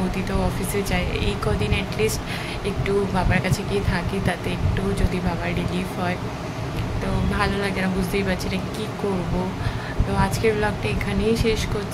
তো অফিসে যায়। এই কদিন অ্যাটলিস্ট একটু বাবার কাছে গিয়ে থাকি, তাতে একটু যদি বাবার রিলিফ হয় তো ভালো লাগে না। বুঝতেই পারছি না কী করবো। তো আজকের ব্লগটা এখানেই শেষ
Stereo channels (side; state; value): both; identical; correlation 1.00